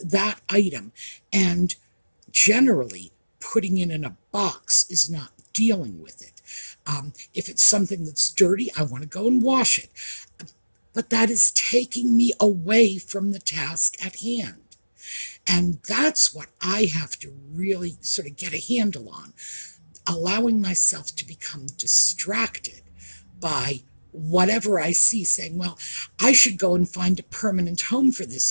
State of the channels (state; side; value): inverted; both; correlation -1.00